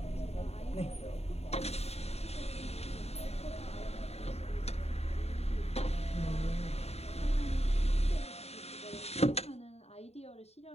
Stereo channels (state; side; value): late; right; 0.30 ms